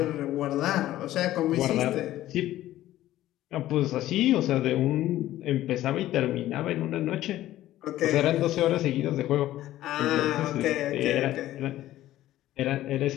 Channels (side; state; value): right; quieter; 14.3 dB